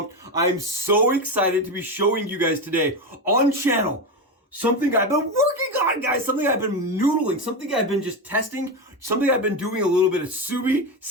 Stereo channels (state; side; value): normal; both; correlation 0.16